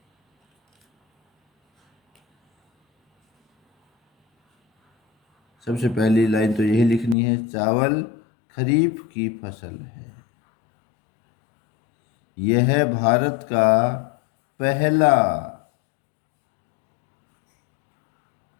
सबसे पहली लाइन तो यही लिखनी है, चावल खरीफ की फसल है। यह भारत का पहला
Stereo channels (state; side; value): drops out; right; at 7.2 s